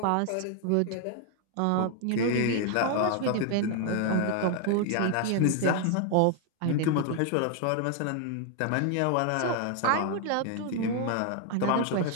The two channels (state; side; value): different; both; correlation 0.00